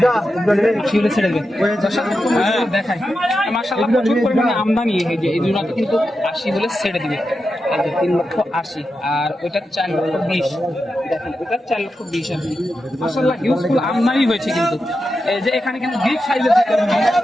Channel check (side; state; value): both; normal; correlation 0.89